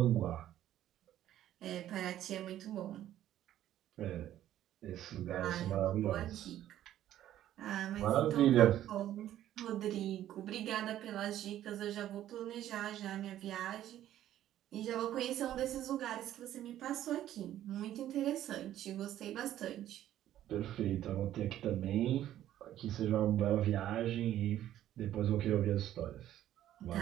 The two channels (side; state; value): left; quieter; 12.4 dB